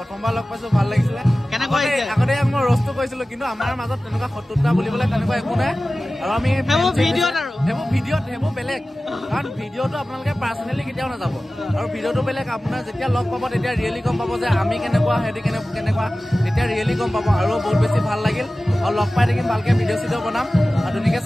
লগ পাইছো ভাল লাগিছিলে কেনেকুৱা আগতে মই ৰ'ষ্টটো কৈছিলো কিন্তু আমাৰ মাজত তেনেকুৱা শত্ৰুতা বুলিবলৈ তেনেকুৱা একো নাই আৰু আমি সেইবোৰ বেলেগ কাৰণ ভিডিঅ'টো আপোনালোকে পাৰ্চনেলি কেতিয়াও নাযাব আৰু ভিডিঅ'টো বেলেগ আপোনাৰ যেতিয়া লগ পাব তেতিয়া ৰিয়েলি গম পাব যে আমি কেনেকুৱা সিহঁতি কেনেকুৱা তেতিয়া ৰিয়েলি গম পাব আৰু বহুত বেছি ভাল লাগিল আৰু লগ পাই থাকিম ভালকে ভিডিঅ' চিডিঅ' বনাম আৰু ধুনীয়াকৈ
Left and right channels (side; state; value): both; normal; correlation 0.96